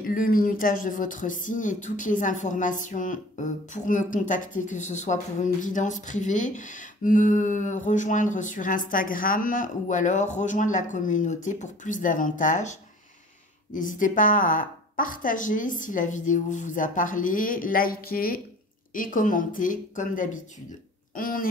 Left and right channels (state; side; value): normal; both; correlation 0.46